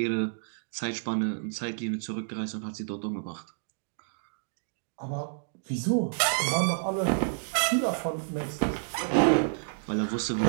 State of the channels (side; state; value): left; silent; digital silence